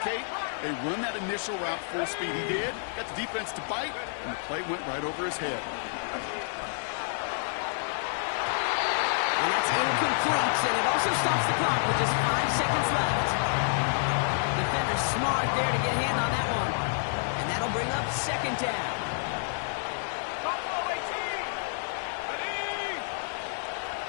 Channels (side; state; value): right; silent; 56 dB below the other